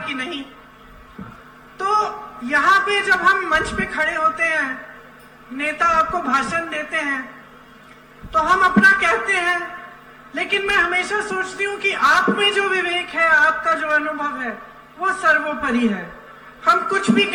नहीं। तो यहाँ पे जब हम मंच पे खड़े होते हैं, नेता आपको भाषण देते हैं, तो हम अपना कहते हैं, लेकिन मैं हमेशा सोचती हूँ कि आप में जो विवेक है, आपका जो अनुभव है, वो सर्वोपरि है। हम कुछ भी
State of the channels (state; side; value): identical; both; correlation 1.00